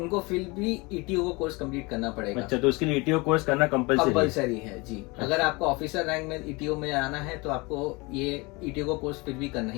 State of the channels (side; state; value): right; quieter; 25.8 dB